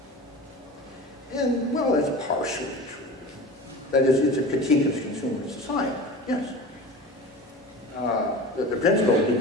And, well, that's partially true. That is, it's a critique of consumer society, yes. The principle of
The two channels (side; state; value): both; normal; correlation 0.34